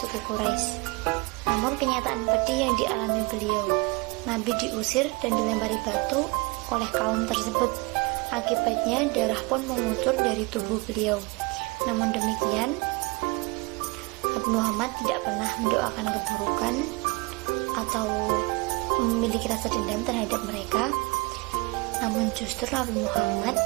Quraisy. Namun kenyataan pedih yang dialami beliau, Nabi diusir dan dilempari batu oleh kaum tersebut. Akibatnya darah pun mengucur dari tubuh beliau. Namun demikian, Nabi Muhammad tidak pernah mendoakan keburukan atau memiliki rasa dendam terhadap mereka. Namun justru Nabi Muhammad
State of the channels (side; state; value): left; quieter; 26.4 dB